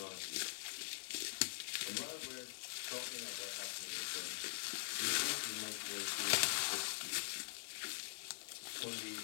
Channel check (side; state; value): right; silent; digital silence